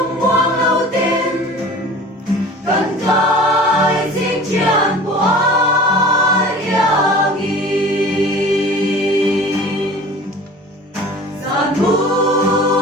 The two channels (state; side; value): normal; both; correlation 0.42